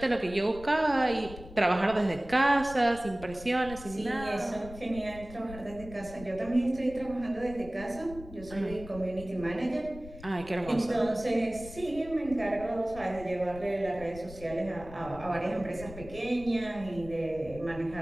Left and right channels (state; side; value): noise; left; rumble, 15 dB below the sound